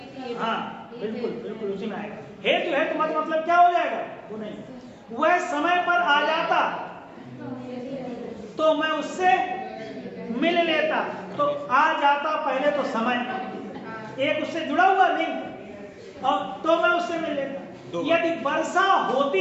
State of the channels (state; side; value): identical; both; correlation 1.00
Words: हाँ बिल्कुल बिल्कुल उसी में आएगा। हेतु है तो मतलब क्या हो जाएगा? वो नहीं, वह समय पर आ जाता तो मैं उससे मिल लेता। तो आ जाता पहले तो समय, एक उससे जुड़ा हुआ लिंक, और तो मैं उससे मिल लेता। यदि वर्षा